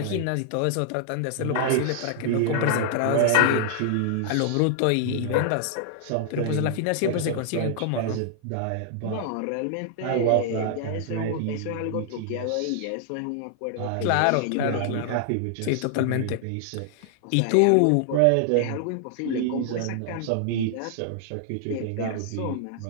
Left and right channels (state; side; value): different; both; correlation 0.00